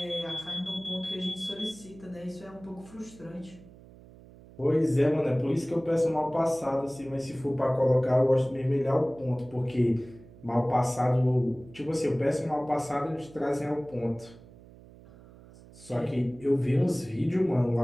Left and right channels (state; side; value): noise; right; hum, 21 dB below the sound